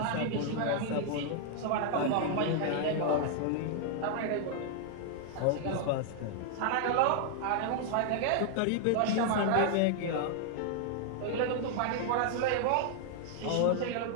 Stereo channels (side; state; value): both; different; correlation 0.00